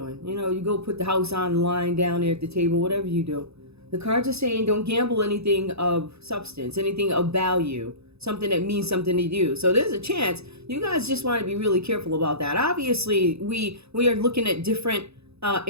you go put the house on the line down there at the table, whatever you do. The cards are saying don't gamble anything of substance, anything of value, something that means something to you. So there's a chance you guys just want to be really careful about that. Obviously, we are looking at different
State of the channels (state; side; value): late; left; 0.79 ms